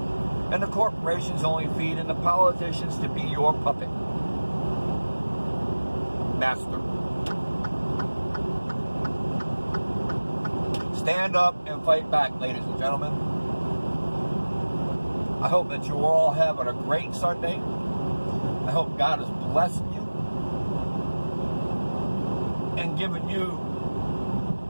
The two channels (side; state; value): both; inverted; correlation -1.00